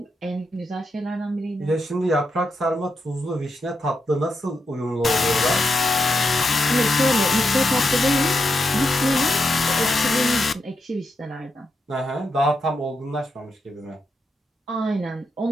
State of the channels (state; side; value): normal; both; correlation 0.84